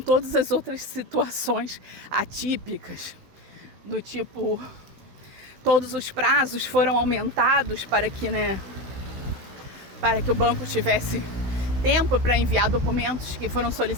as outras situações atípicas, do tipo, todos os prazos foram aumentados para que o banco tivesse tempo para enviar documentos que foram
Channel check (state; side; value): late; left; 16 ms